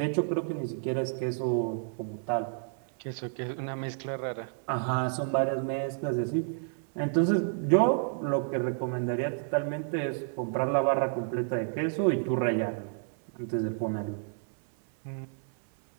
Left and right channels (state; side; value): silent; left; 58 dB below the other